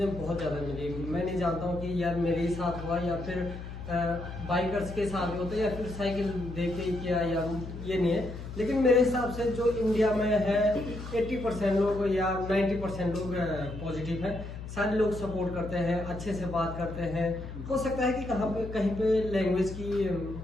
बहुत ज़्यादा मिली। मैं नहीं जानता हूँ कि यार मेरे ही साथ हुआ या फिर बाइकर्स के साथ होता है या फिर साइकिल देख के ही किया, या ये नहीं है। लेकिन मेरे हिसाब से जो इंडिया में है 80% लोग या 90% लोग पॉजिटिव हैं। सारे लोग सपोर्ट करते हैं, अच्छे से बात करते हैं। हो सकता है कि कहीं पे लैंग्वेज की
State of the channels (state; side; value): noise; left; hum, 10 dB below the sound